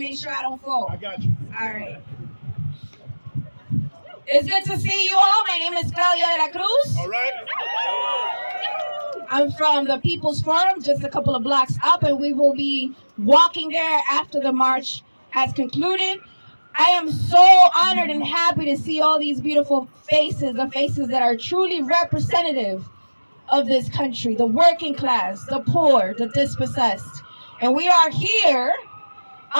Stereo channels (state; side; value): inverted; both; correlation -1.00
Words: sure I don't fall. I got you. All right. It's good to see you all. My name is Claudia de la Cruz. All right. I'm from the People's Forum, just a couple of blocks up, and we will be walking there after the march has concluded. I am so honored and happy to see all these beautiful faces, the faces that are truly representative of this country, the working class, the poor, the dispossessed. And we are here